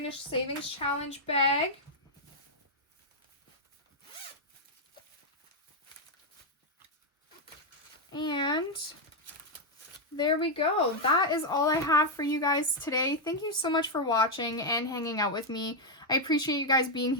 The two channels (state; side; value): normal; both; correlation 0.01